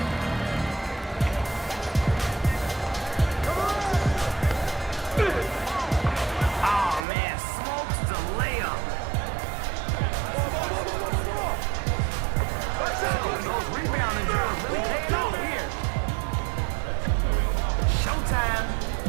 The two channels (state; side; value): drops out; left; at 7.1 s